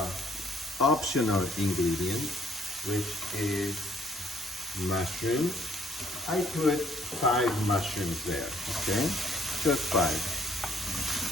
optional ingredient, which is mushrooms. I put 5 mushrooms there, okay? Just 5.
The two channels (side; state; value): both; normal; correlation 0.64